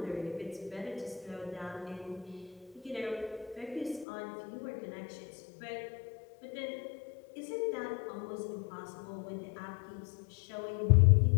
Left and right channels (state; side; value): drops out; right; at 4.0 s